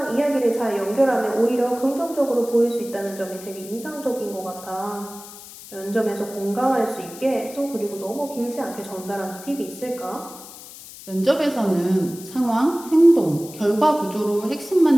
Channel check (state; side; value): noise; left; hiss, 16 dB below the sound